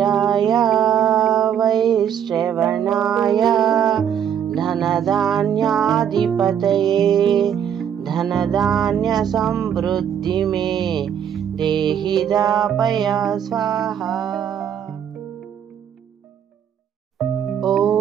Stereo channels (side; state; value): left; quieter; 8.9 dB